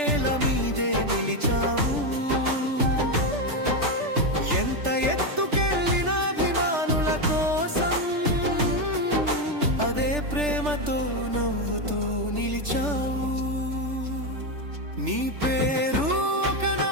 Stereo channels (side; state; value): left; late; 3.3 ms